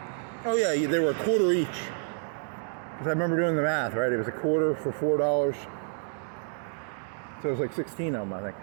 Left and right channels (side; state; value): left; silent; 59 dB below the other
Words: Oh yeah, they were a quarter each. Because I remember doing the math, right? It was a quarter for $4. So it was like 16 of them, I think.